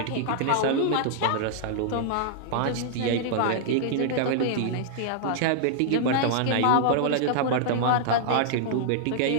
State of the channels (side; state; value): both; different; correlation -0.01